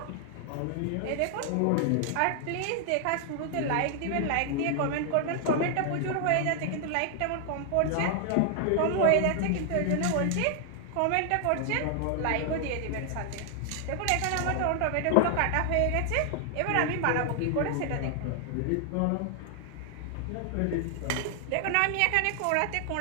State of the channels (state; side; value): different; both; correlation 0.00